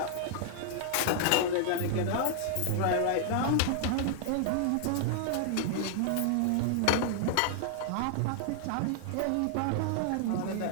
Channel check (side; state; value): both; different; correlation -0.01